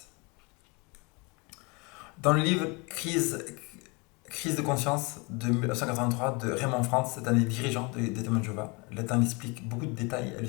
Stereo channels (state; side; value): quieter; right; 28.7 dB